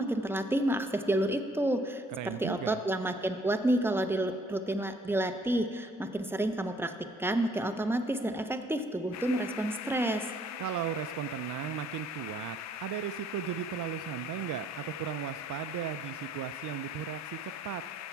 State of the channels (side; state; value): both; normal; correlation 0.63